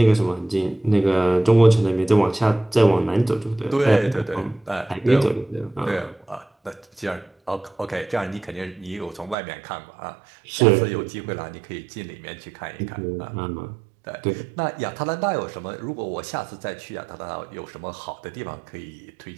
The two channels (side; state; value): left; drops out; at 9.3 s